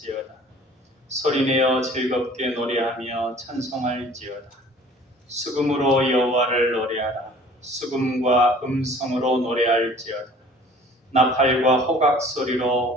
소리내어 즐겁게 노래하며 찬송할지어다. 수금으로 여호와를 노래하라. 수금과 음성으로 노래할지어다. 나팔과 호각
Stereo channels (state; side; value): normal; both; correlation 0.49